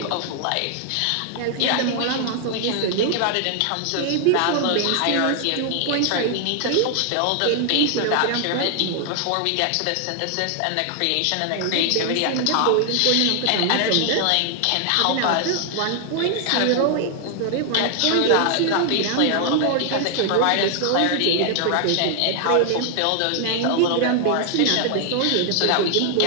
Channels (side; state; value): both; different; correlation 0.00